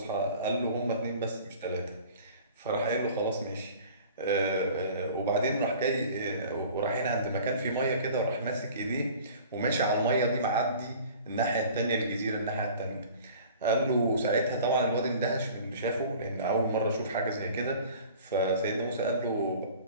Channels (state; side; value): inverted; both; correlation -0.46